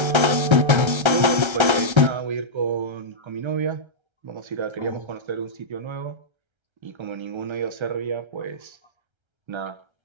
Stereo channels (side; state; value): left; late; 1.3 ms